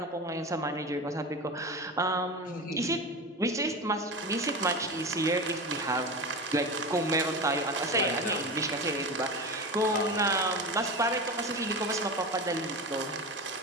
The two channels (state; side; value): normal; both; correlation 0.25